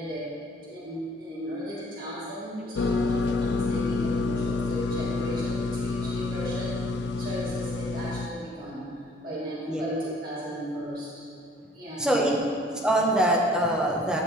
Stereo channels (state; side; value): normal; both; correlation 0.57